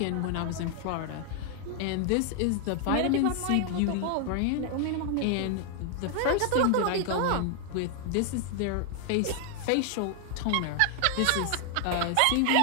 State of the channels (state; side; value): different; both; correlation 0.00